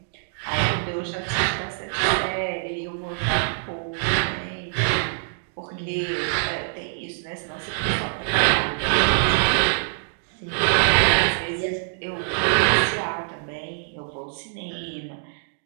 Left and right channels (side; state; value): left; silent; digital silence